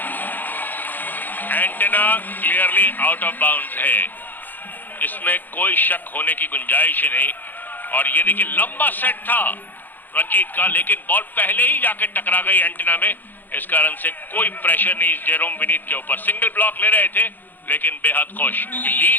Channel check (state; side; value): late; right; 0.087 ms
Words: Antenna clearly out of bounds है, इसमें कोई शक होने की गुंजाइश ही नहीं। और ये देखिए लंबा सेट था रंजीत का, लेकिन बॉल पहले ही जाके टकरा गई एंटेना में, इस कारण से कोई प्रेशर नहीं जेरोम विनीत के ऊपर। सिंगल ब्लॉक ले रहे थे लेकिन बेहद खुश,